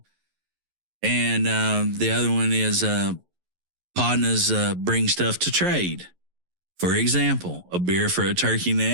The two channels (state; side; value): late; left; 11 ms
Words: And the other one is Podnas bring stuff to trade. For example, a beer for a turkey